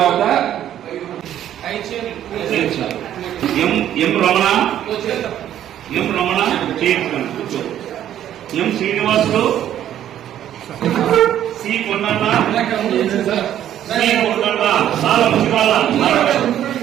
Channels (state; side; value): quieter; left; 11.2 dB